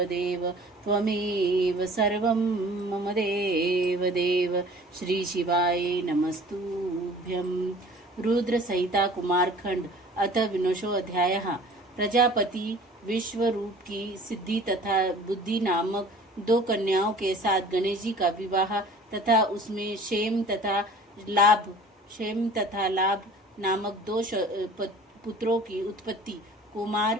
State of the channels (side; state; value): both; normal; correlation 0.46